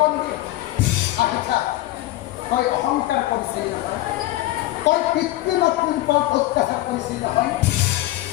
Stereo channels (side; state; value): right; quieter; 16.7 dB